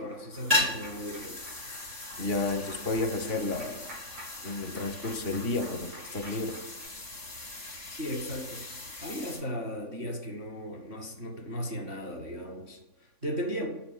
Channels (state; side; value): late; left; 3.5 ms